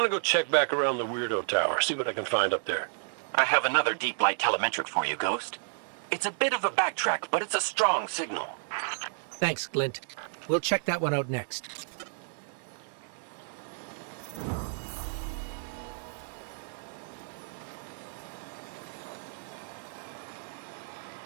go check back around the Weirdo Tower, see what I can find up there. I have another deep light telemetric for you, Ghost. It's a bit of a backtrack, but it's a strong signal. Thanks, Glint. We'll check that one out next.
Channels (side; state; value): left; silent; digital silence